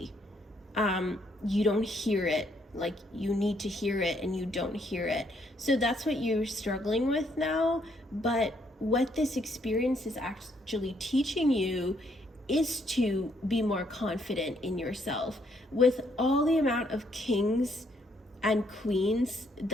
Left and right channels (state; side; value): normal; both; correlation 0.71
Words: You don't hear it like you need to hear it, and you don't hear it. So that's what you're struggling with now. But what this experience is actually teaching you is to be more confident in yourself. With all the amount of kings and queens